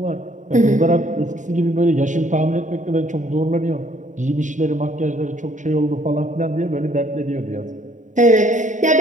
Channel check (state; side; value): late; left; 0.36 ms